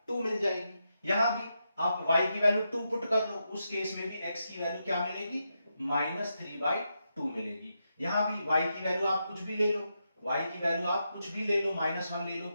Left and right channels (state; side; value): inverted; both; correlation -0.85